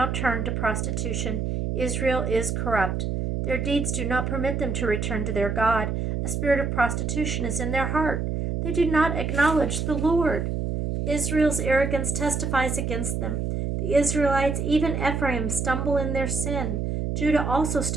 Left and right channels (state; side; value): noise; right; hum, 1 dB below the sound